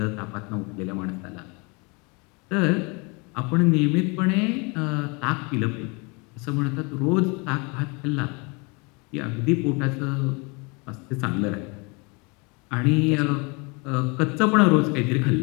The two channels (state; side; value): quieter; right; 30.0 dB